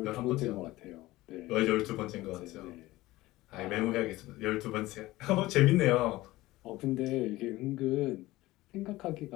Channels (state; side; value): quieter; right; 18.2 dB